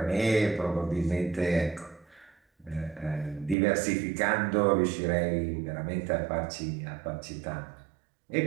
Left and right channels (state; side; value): drops out; left; at 3.6 s